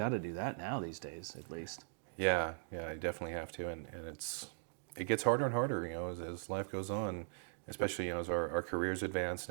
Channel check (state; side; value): silent; left; digital silence